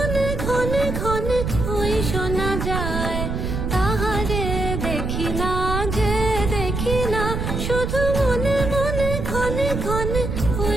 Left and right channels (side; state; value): right; noise; rumble, 3 dB below the sound